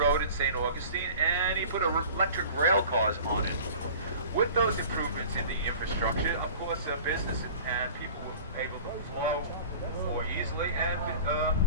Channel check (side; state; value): both; inverted; correlation -0.39